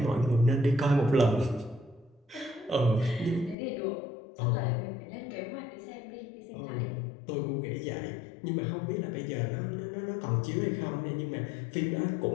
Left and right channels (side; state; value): right; drops out; at 3.6 s